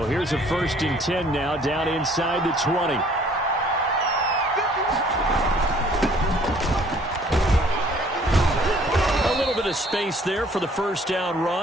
here's a first and 10 now down inside the 20. A little bit of space there for the first down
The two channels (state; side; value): normal; both; correlation 0.57